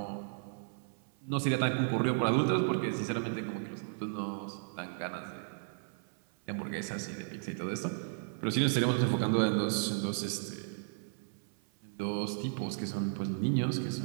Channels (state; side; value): silent; left; 55 dB below the other